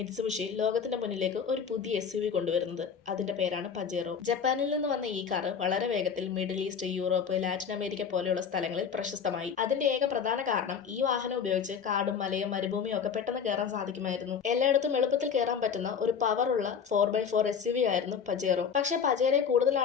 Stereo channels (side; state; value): right; quieter; 6.9 dB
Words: ലോകത്തിന്റെ മുന്നിലേക്ക് ഒരു പുതിയ SUV കൊണ്ടുവരുന്നത്. അതിന്റെ പേരാണ് പജേറോ. ജപ്പാനിൽ നിന്ന് വന്ന ഈ കാറ് വളരെ വേഗത്തിൽ middle east, Europe, Latin America പോലെയുള്ള സ്ഥലങ്ങളിൽ പ്രശസ്തമായി. അതിന്റെ ഏക പ്രധാന കാരണം ഈ വാഹനം ഉപയോഗിച്ച് കാടും മലയും മരുഭൂമിയും ഒക്കെ പെട്ടെന്ന് കയറാൻ സാധിക്കുമായിരുന്നു. എല്ലായിടത്തും എളുപ്പത്തിൽ കയറാൻ പറ്റുന്ന ഒരു പവറുള്ള 4x4 SUV ആയിരുന്നു പജേറോ. പക്ഷെ പജേറോയെ കൂടുതൽ